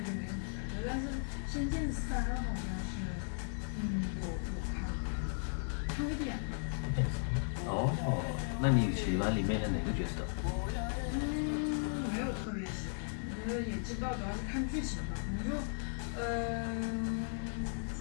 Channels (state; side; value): silent; right; digital silence